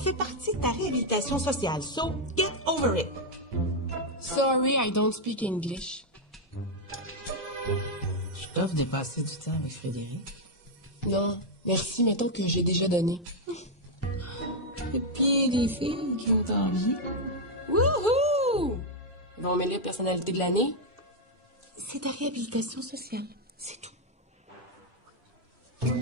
partie de ta réhabilitation sociale. So, get over it. Sorry, I don't speak English. Je t'offre de passer du temps avec Frédéric. Non, merci, mettons que j'ai déjà donné. Et puis, des filles qui ont envie. Wouhou! Ils vont mêler personnalité de l'année. C'est ta réhabilitation sociale. C'est tout. Tu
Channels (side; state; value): both; normal; correlation 0.00